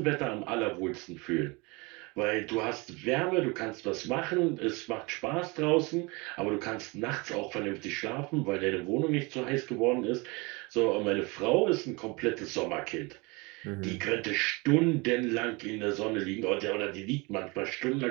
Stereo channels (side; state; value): left; quieter; 26.9 dB